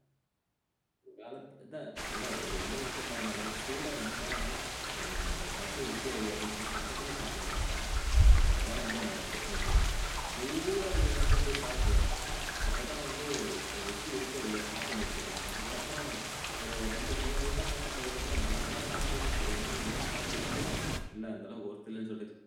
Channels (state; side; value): identical; both; correlation 1.00